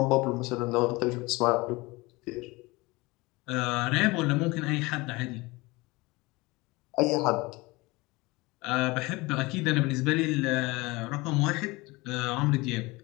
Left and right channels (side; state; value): right; quieter; 23.1 dB